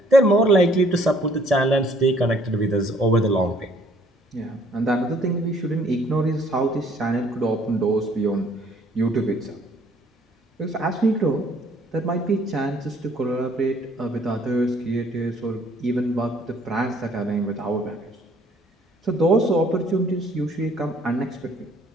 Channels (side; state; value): both; normal; correlation 0.61